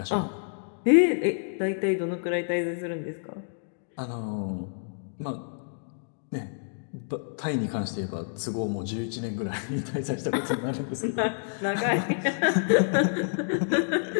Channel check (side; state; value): right; silent; digital silence